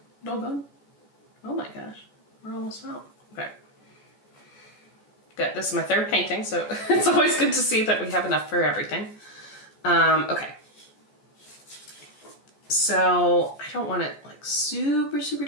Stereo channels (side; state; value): right; late; 14 ms